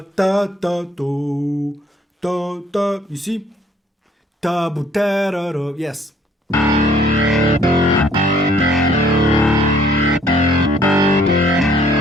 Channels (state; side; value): normal; both; correlation 0.62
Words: da da do, da da. You see? Da bu da da do. Yes.